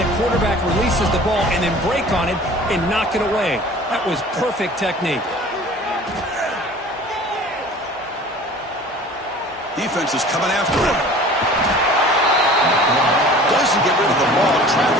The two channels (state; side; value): normal; both; correlation 0.45